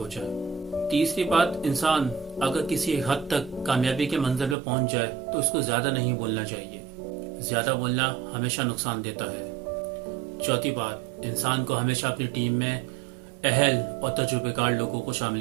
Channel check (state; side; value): drops out; left; at 4.5 s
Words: جائے۔ تیسری بات، انسان اگر کسی حد تک کامیابی کے منزل پہ پہنچ جائے تو اس کو زیادہ نہیں بولنا چاہیے، زیادہ بولنا ہمیشہ نقصان دیتا ہے۔ چوتھی بات، انسان کو ہمیشہ اپنی ٹیم میں اہل اور تجربے کار لوگوں کو